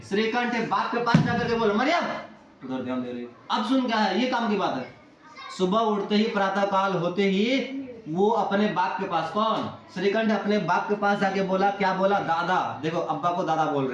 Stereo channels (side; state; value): both; identical; correlation 1.00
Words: श्रीकंठ बाप के पास जाकर के बोले, मरियम उधर ध्यान दे रही। अब सुन क्या है, ये काम की बात है। सुबह उठते ही प्रातः काल होते ही वो अपने बाप के पास, कौन? श्रीकंठ अपने बाप के पास जाके बोला, क्या बोला? दादा, देखो अब्बा को दादा बोल